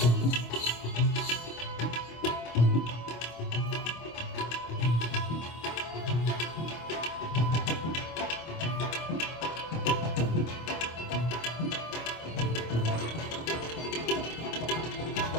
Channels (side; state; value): right; late; 25 ms